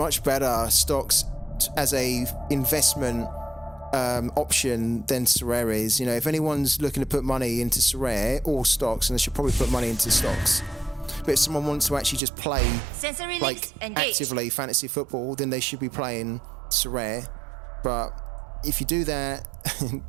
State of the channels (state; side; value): drops out; left; at 12.2 s